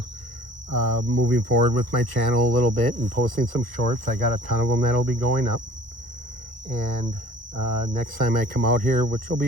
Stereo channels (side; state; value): left; late; 1.1 ms